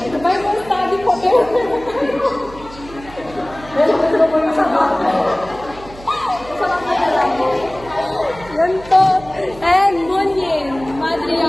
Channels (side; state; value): right; noise; hum, 18 dB below the sound